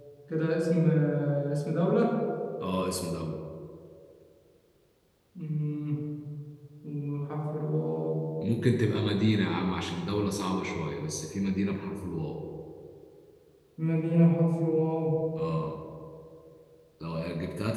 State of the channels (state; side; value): identical; both; correlation 1.00